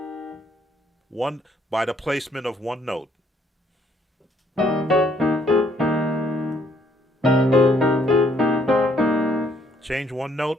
One by the placement of one note. Change one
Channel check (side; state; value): both; normal; correlation 0.66